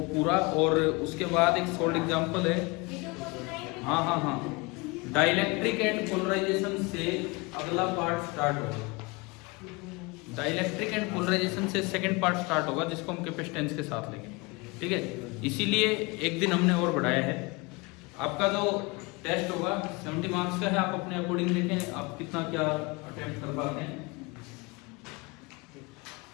पूरा। और उसके बाद एक सॉल्ड एग्जांपल है, हाँ, डाइलेक्ट्रिक एंड पोलराइजेशन से अगला पार्ट स्टार्ट होगा। डाइलेक्ट्रिक एंड पोलराइजेशन से सेकंड पार्ट स्टार्ट होगा जिसको हम कैपेसिटेंस के साथ लेंगे, ठीक है। इसीलिए एक दिन हमने और बढ़ाया है। आपका जो टेस्ट होगा 70 मार्क्स का है, आप अपने अकॉर्डिंग देखें आप कितना क्या अटेम्प्ट कर पाते हैं।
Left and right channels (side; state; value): right; quieter; 26.6 dB